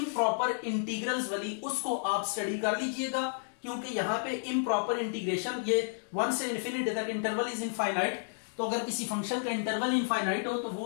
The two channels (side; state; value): right; silent; digital silence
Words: इंटीग्रल्स वाली, उसको आप स्टडी कर लीजिएगा, क्योंकि यहां पे इम्प्रॉपर इंटीग्रेशन, ये 1 से इंफिनिटी तक इंटरवल इज इनफाइनाइट, तो अगर किसी फंक्शन का इंटरवल इनफाइनाइट हो तो